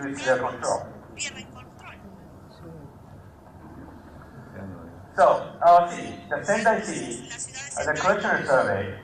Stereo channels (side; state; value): both; identical; correlation 1.00